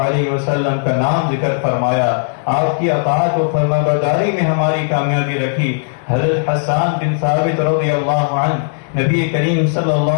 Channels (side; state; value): right; silent; digital silence